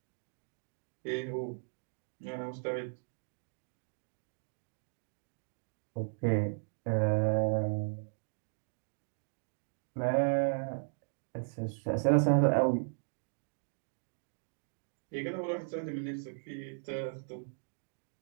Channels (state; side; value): silent; left; digital silence